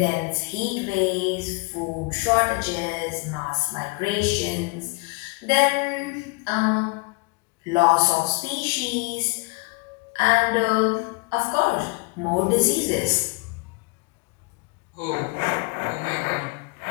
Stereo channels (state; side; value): quieter; right; 28.3 dB